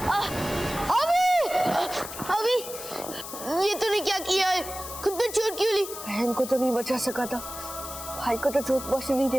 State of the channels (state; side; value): noise; left; hiss, 10 dB below the sound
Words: अभी ये तूने क्या किया है? खुद पे चोट क्यों ली? बहन को तो नहीं बचा सका था, भाई को तो चोट पहुंचने नहीं